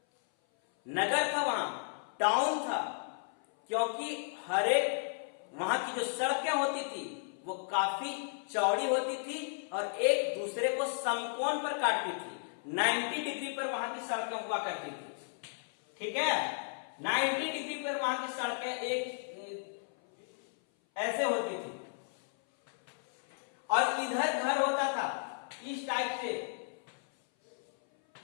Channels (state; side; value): silent; right; 55 dB below the other